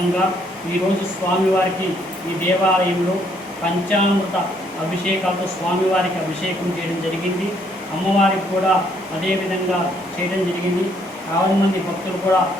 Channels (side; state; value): both; normal; correlation 0.68